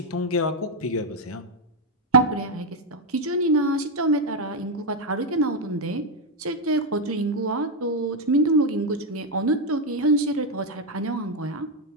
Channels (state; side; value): normal; both; correlation 0.03